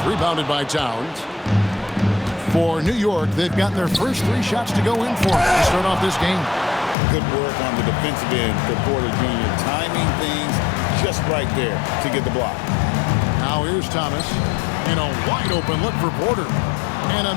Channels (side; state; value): right; drops out; at 7.0 s